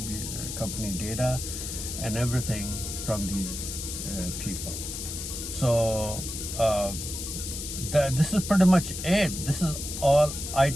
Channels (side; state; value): left; noise; hiss, 6 dB below the sound